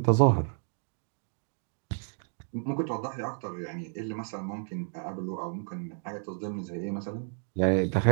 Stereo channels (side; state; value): left; silent; 57 dB below the other